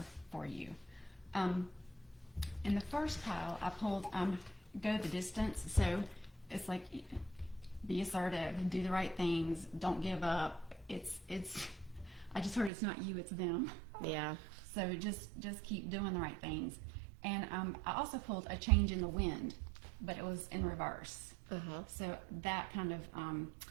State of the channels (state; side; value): drops out; left; at 12.7 s